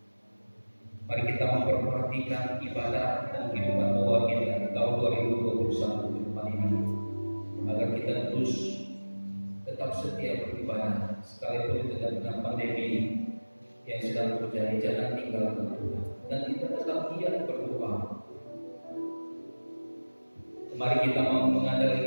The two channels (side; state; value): both; inverted; correlation -1.00